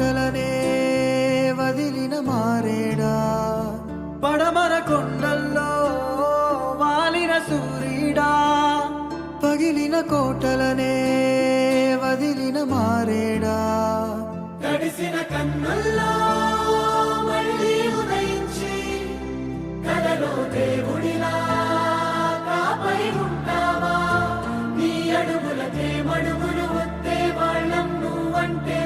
వదిలిన మారేడా. పడమర కొండల్లో వాలిన సూర్యుడా, పగిలిన కోటలనే వదిలిన మారేడా. తడిసిన కన్నుల్లో మళ్ళీ ఉదయించి కలలో దేవుడిలా కాపై ఉంటావా. నీ అడుగులకే మడుగులు వస్తే వాళ్ళం, నువ్వంటే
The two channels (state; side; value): identical; both; correlation 1.00